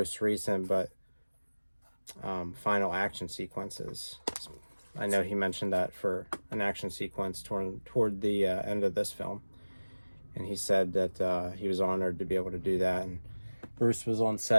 recent but final action sequences. I know he mentioned that for an action sequence toward the end of this film, and he said that he was honored to be able to do that. And Bruce was on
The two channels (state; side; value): inverted; both; correlation -1.00